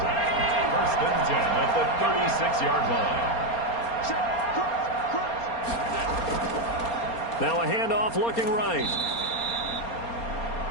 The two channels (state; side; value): late; right; 4.3 ms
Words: First and 10 at the 36-yard line. Now a handoff looking right.